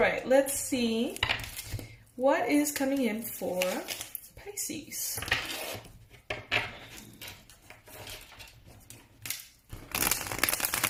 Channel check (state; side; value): identical; both; correlation 1.00